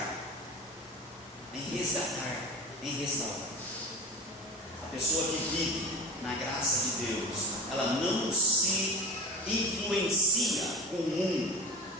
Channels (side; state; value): both; normal; correlation 0.33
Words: em resgatar, em restaurar. A pessoa que vive na graça de Deus, ela não se influencia com o mundo,